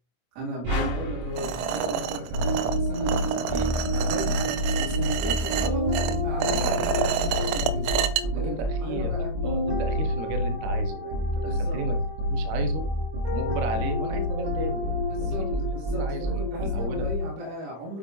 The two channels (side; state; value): left; late; 25 ms